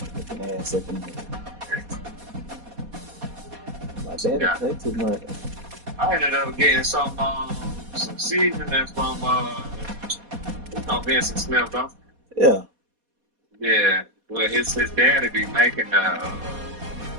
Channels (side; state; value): left; late; 4.2 ms